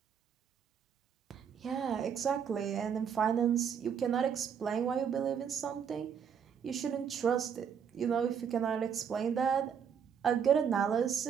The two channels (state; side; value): quieter; left; 7.5 dB